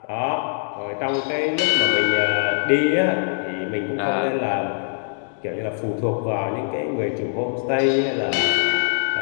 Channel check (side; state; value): right; silent; digital silence